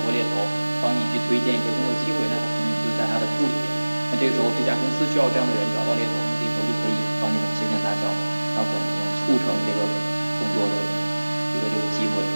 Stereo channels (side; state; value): both; inverted; correlation -1.00